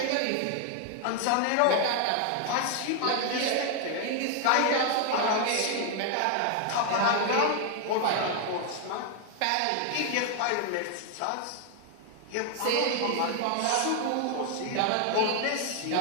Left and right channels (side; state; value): both; different; correlation 0.00